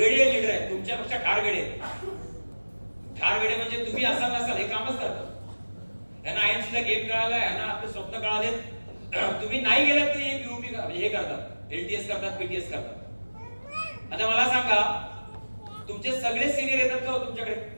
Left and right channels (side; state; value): both; inverted; correlation -1.00